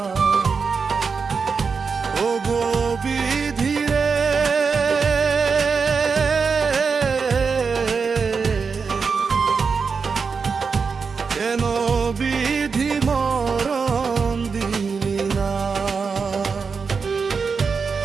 ও গো বিধি রে, কেন বিধি মরণ দিলি না?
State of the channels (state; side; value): quieter; left; 5.3 dB